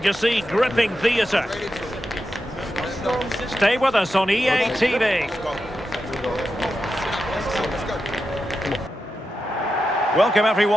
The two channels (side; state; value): both; normal; correlation 0.89